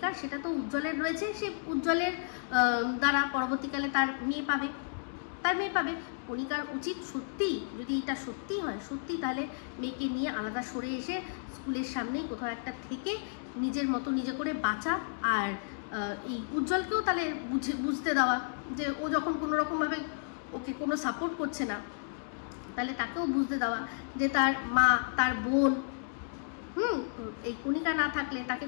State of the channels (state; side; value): silent; right; digital silence